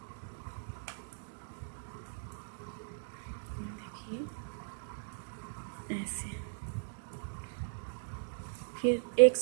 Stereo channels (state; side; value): silent; left; digital silence